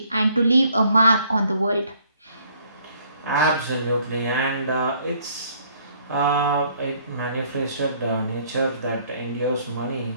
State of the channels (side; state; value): both; inverted; correlation -0.62